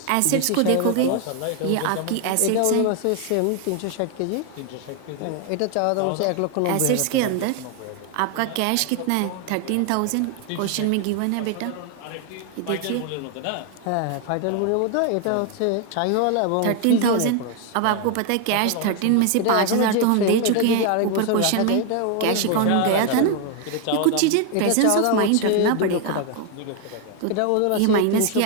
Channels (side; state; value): both; different; correlation 0.01